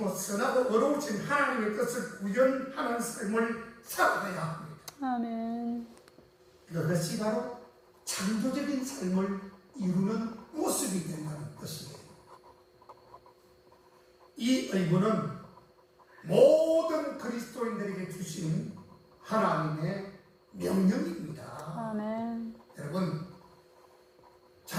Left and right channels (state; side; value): identical; both; correlation 1.00